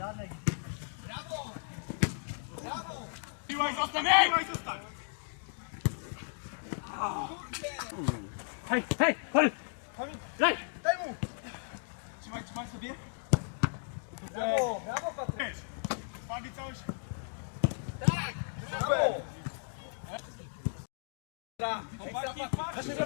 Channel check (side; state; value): right; silent; digital silence